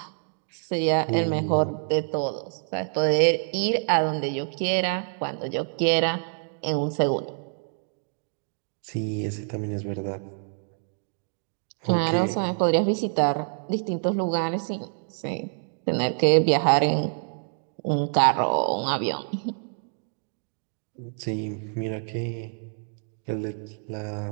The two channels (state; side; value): silent; left; 60 dB below the other